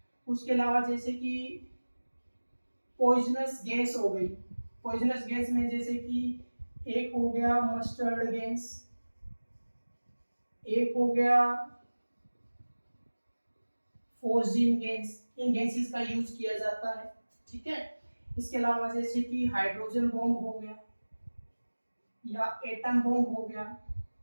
उसके अलावा जैसे कि पॉइजनस गैस हो गई। पॉइजनस गैस में जैसे कि एक हो गया मस्टर्ड गैस, एक हो गया फोर्जिन गैस, इन गैसेस का यूज किया जाता है। ठीक है, इसके अलावा जैसे कि हाइड्रोजन बॉम्ब हो गया या एटम बॉम्ब हो गया,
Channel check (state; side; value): inverted; both; correlation -1.00